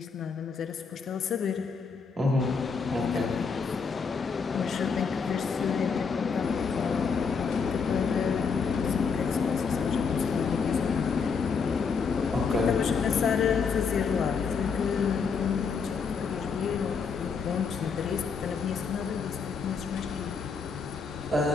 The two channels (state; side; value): quieter; right; 5.5 dB